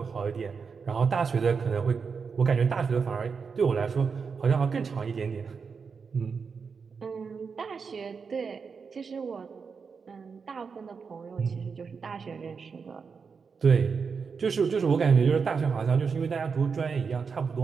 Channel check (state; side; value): quieter; left; 5.6 dB